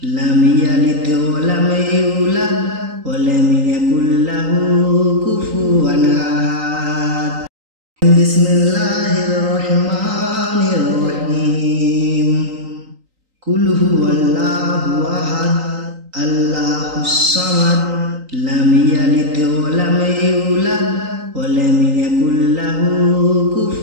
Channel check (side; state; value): left; late; 3.9 ms